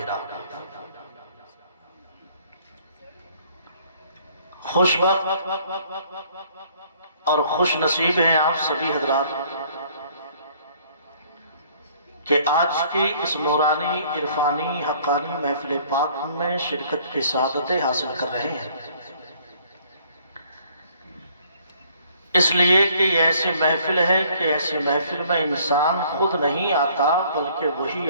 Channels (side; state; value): both; inverted; correlation -0.60